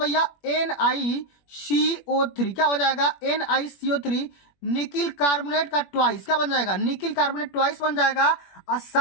भैया, NiCO3। क्या हो जाएगा, NiCO3 निकिल कार्बोनेट का ट्वाइस। क्या बन जाएगा, निकिल कार्बोनेट ट्वाइस बन जाएगा। और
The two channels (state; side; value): late; right; 21 ms